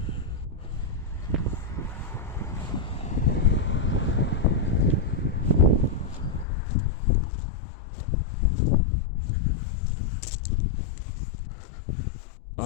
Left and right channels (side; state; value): right; drops out; at 6.5 s